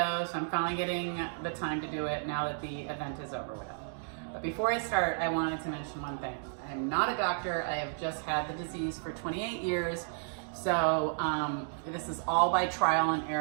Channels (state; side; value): silent; left; digital silence